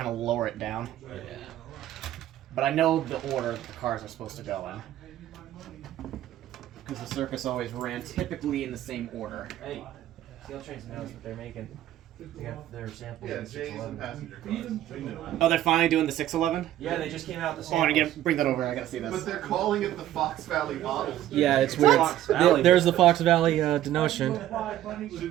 of lower it down. Yeah. But I know the order the cars are supposed to go in. Because the circus always ran typically in the same order. Hey, Scale Trains knows what they're making. They got their samples Yeah, in J's and 611. passenger cars. We knew it. Oh, they're finally doing the 611? Yeah, they just came out the Oh, I want samples. to bring that over. I gotta see But this. they're calling it the Fox Valley models. Yeah, it's What? weird. Fox Valley. There's the Fox Valley denotion.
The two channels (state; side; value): quieter; left; 12.9 dB